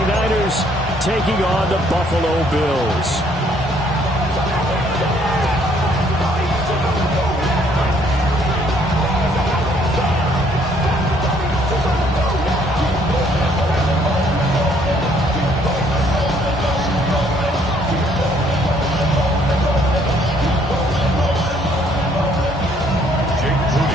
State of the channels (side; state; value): both; normal; correlation 0.65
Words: taking on the Buffalo Bills.